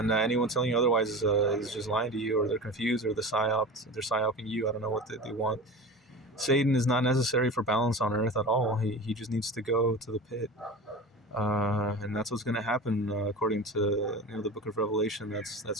anyone telling you otherwise is just lying to you, or they're confused, or they're psyoping you. I don't know what they want. Satan is not necessary for balance on Earth at all. He just needs to go to the pit, and that's what's going to happen according to the Book of Revelation.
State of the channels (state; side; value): normal; both; correlation 0.31